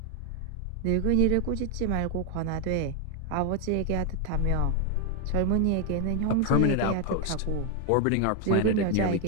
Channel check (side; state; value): both; different; correlation 0.01